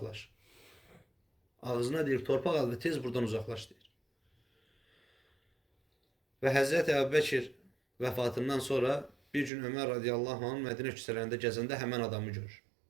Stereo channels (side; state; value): left; drops out; at 9.5 s